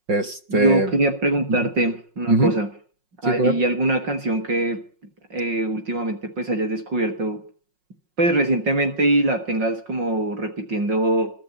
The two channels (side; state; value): left; late; 5.5 ms